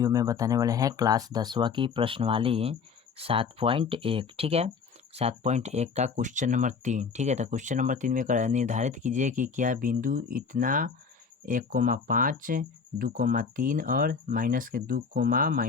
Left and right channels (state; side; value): quieter; right; 5.6 dB